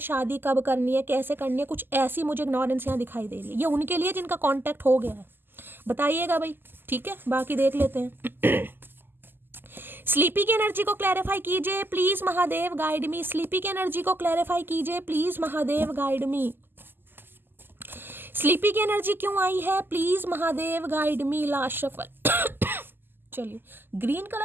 कब करनी है, कैसे करनी है, कुछ ऐसी मुझे इग्नोरेंस यहाँ दिखाई दे रही है। ये उनके लिए जिनका कांटेक्ट हो गया है, बताइएगा भाई, ठीक है, बाकी देख लेते हैं। स्लीपी की एनर्जी को क्लैरिफाई कीजिए please, Mahadev guide me. Sleepy की एनर्जी को क्लैरिफाई कीजिए please, Mahadev guide me. Sleepy की एनर्जी क्यों आई है, please Mahadev guide me. Last shuffle. चलिए, ग्रीन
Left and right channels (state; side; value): late; left; 0.096 ms